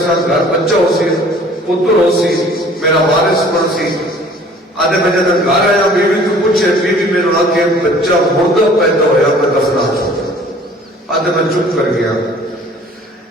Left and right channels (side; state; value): both; normal; correlation 0.51